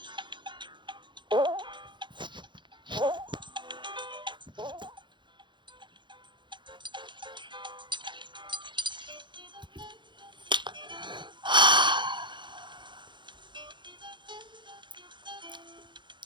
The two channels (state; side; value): late; left; 0.23 ms